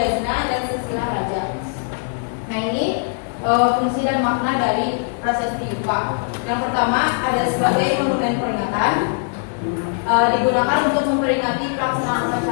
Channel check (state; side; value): silent; right; 65 dB below the other